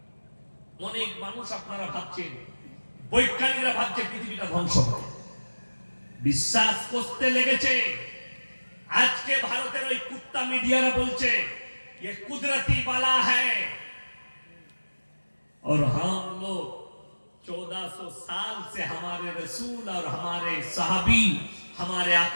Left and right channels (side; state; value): both; inverted; correlation -1.00